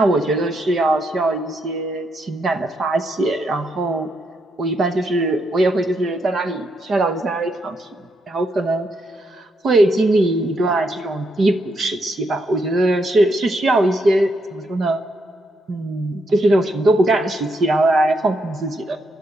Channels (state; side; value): normal; both; correlation 0.78